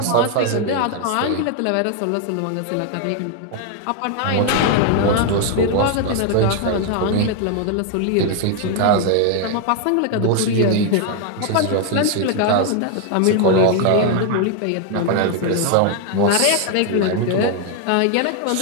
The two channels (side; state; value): both; different; correlation 0.00